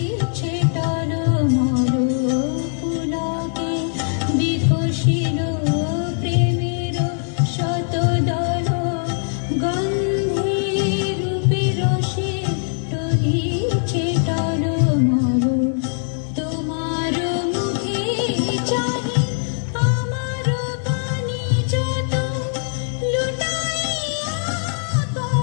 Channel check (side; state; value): right; silent; digital silence